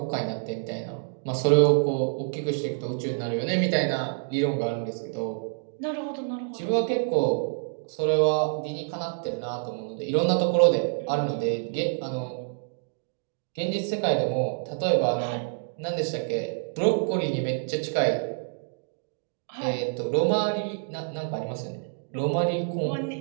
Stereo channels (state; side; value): silent; left; digital silence